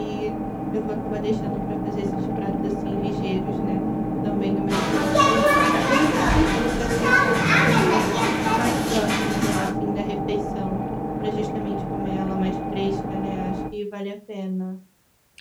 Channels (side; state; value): both; identical; correlation 1.00